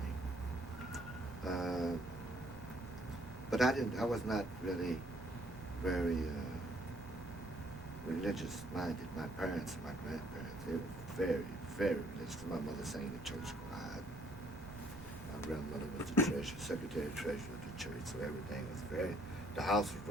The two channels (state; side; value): noise; right; rumble, 16 dB below the sound